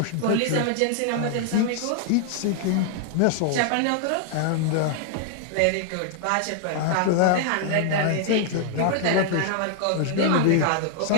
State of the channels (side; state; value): both; different; correlation 0.00